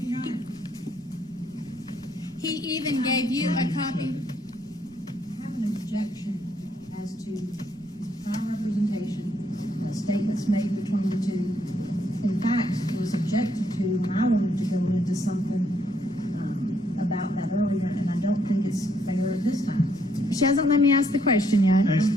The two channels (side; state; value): right; noise; rumble, 27 dB below the sound